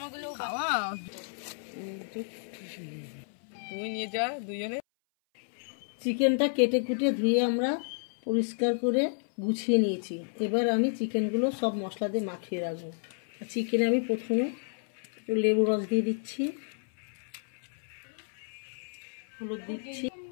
তুমি নিয়ে যা দুজনে। চিকেনটা কেটে কুটে ধুয়ে আমরা পরিষ্কার করে গুছিয়ে নিয়েছি। এবার আমি চিকেনগুলো সব মশলা দিয়ে মাখিয়ে রাখবো। চিকেনে আমি প্রথমে একটু লেবু রস দিয়ে দিচ্ছি, হলুদ দিচ্ছি,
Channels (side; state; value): right; silent; 57 dB below the other